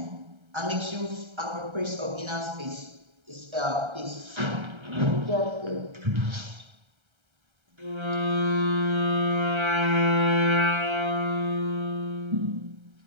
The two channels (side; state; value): left; late; 1.3 ms